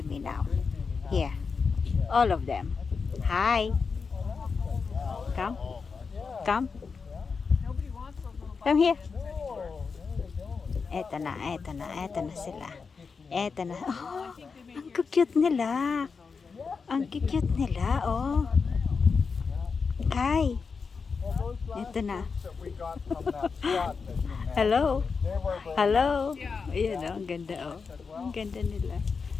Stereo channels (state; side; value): quieter; right; 5.2 dB